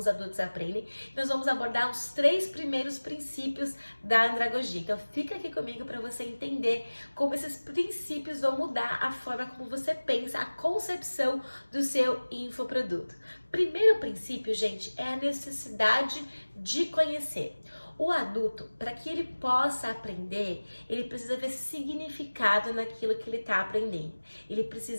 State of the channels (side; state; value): both; inverted; correlation -1.00